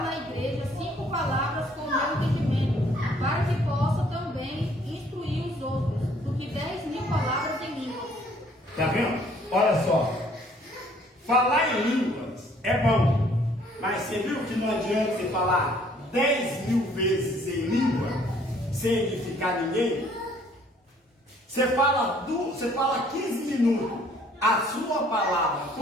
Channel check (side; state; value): both; normal; correlation 0.60